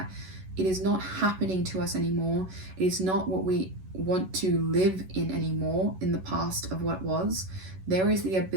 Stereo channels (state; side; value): late; left; 11 ms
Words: it is not happening to us anymore. It is not what we want to live in anymore in the past of what was. There is the